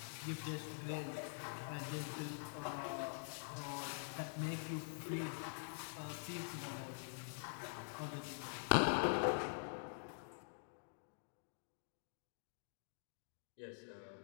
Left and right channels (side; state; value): right; silent; digital silence